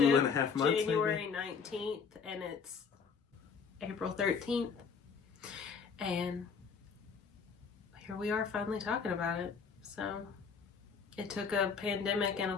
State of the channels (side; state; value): right; quieter; 5.8 dB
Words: 2.5 months, January 19th and it's April 13th. And here we are finally talking about it. So it took a pandemic and a